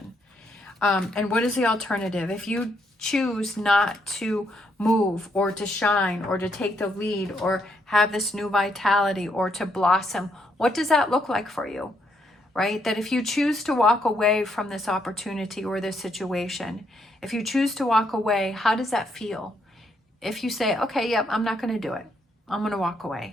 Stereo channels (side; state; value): both; normal; correlation 0.75